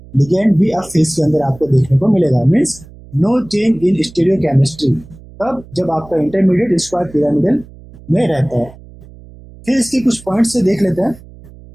लिगेंड भी अप फेस के अंदर आपको देखने को मिलेगा। Means no change in stereochemistry, तब जब आपका इंटरमीडिएट स्क्वायर पिरामिडल में रहता है। फिर इसके कुछ पॉइंट से देख लेते हैं।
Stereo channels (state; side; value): noise; right; hum, 21 dB below the sound